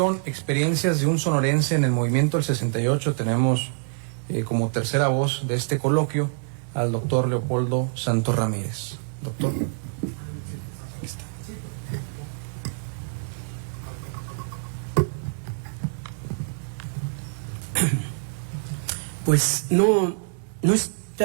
experiencias de un sonorense en el movimiento del 68, tenemos como tercera voz de este coloquio al doctor Leopoldo Santos Ramírez. Doctor. Aquí está. Pues no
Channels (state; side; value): silent; left; digital silence